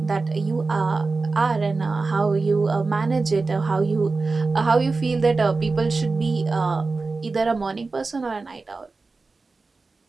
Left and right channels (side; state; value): left; quieter; 3.9 dB